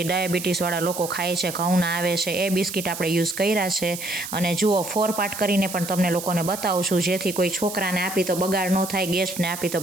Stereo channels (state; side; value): noise; right; hiss, 9 dB below the sound